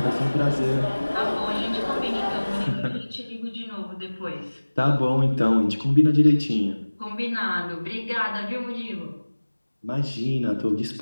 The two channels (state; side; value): inverted; both; correlation -1.00